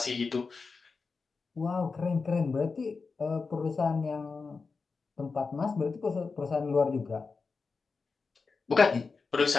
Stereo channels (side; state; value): right; quieter; 4.6 dB